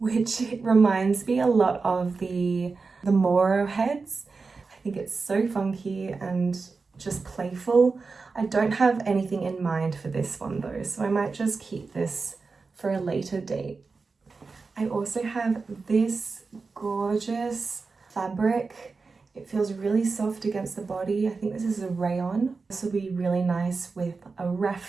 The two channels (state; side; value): quieter; left; 4.3 dB